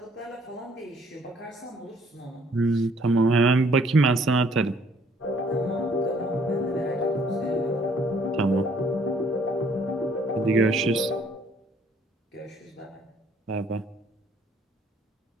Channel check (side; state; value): both; normal; correlation 0.62